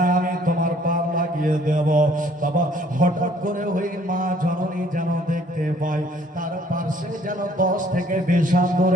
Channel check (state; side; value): normal; both; correlation 0.59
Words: আমি তোমার পার লাগিয়ে দেব। বাবা হঠাৎ করে ওই মা জননী যেন দেখতে পায় তার পাশে যেন 10 থেকে 20 হাত